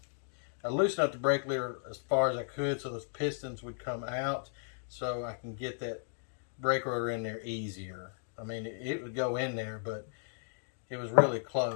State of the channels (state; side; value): silent; right; digital silence